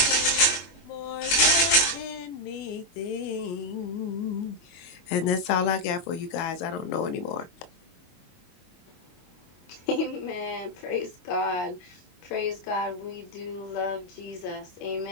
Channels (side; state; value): right; late; 22 ms